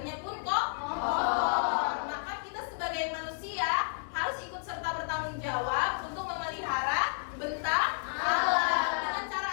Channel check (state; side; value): silent; right; digital silence